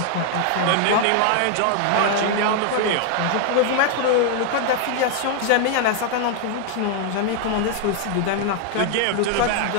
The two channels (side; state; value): both; different; correlation 0.00